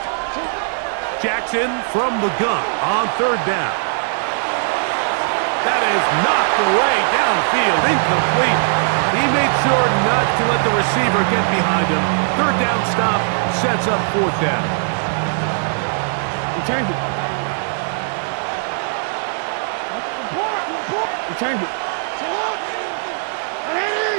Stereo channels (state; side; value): silent; left; digital silence